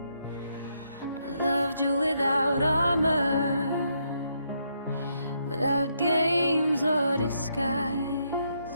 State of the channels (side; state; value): both; inverted; correlation -0.77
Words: I loved you without armor, without games or